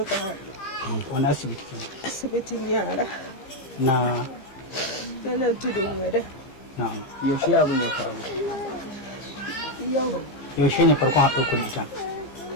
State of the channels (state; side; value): late; right; 15 ms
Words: haɗu. Wani asibiti ke? Asibitin yara. Na Na nan tudun wada. na'am. Yaushe abin ya faru? Yau Yaushe ne farkon haɗo ku da ita?